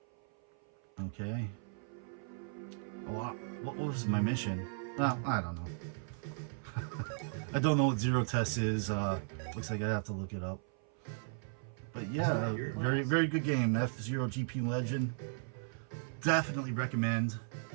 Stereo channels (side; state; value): left; silent; 54 dB below the other